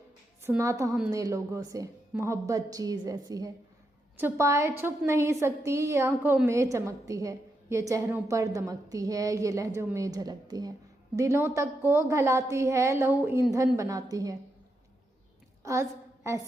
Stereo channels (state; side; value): normal; both; correlation 0.83